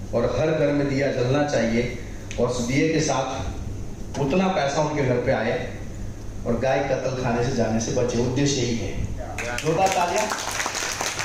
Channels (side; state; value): both; identical; correlation 1.00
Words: और हर घर में दिया जलना चाहिए, और उस दिए के साथ उतना पैसा उनके घर पे आए और गाय कत्ल खाने से जाने से बचे। उद्देश्य यही है। जोरदार तालियां।